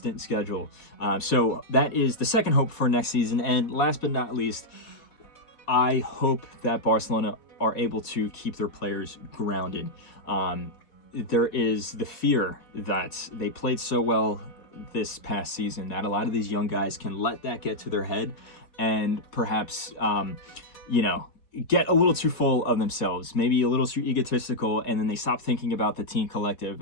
schedule. So that is the second hope for next season. And last but not least, I hope that Barcelona are able to keep their players grounded. There is the fear that they played so well this past season that a lot of these young guys can let that get to their head and perhaps, you know, get a little too full of themselves, maybe a little too egotistical, and then they stop thinking about the team collective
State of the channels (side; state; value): right; late; 4.1 ms